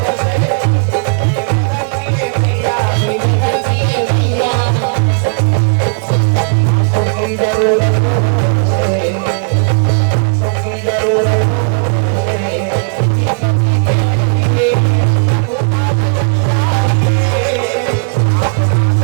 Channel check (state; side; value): silent; left; 66 dB below the other